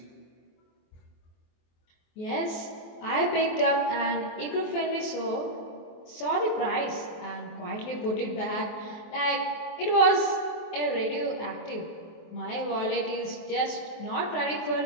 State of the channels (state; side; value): late; right; 23 ms